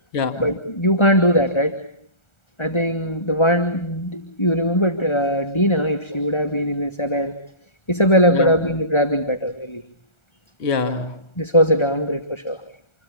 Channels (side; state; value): right; late; 1.3 ms